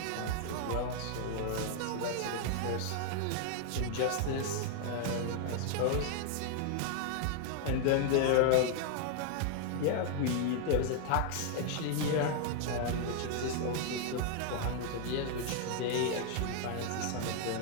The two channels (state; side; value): different; both; correlation 0.00